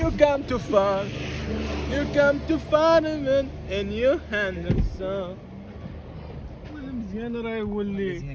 come to fun. You come to fun and you handle so. ولا مزيان راه يولي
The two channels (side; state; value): both; identical; correlation 1.00